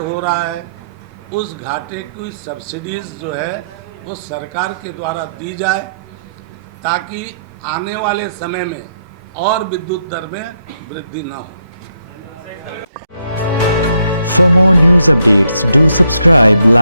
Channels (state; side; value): inverted; both; correlation -0.76